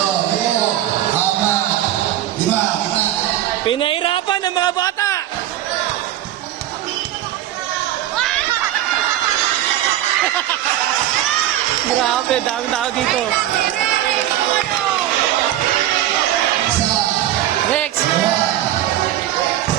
Pinahirapan ng mga bata. Grabe, daming tao dito. Next.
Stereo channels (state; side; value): quieter; left; 12.8 dB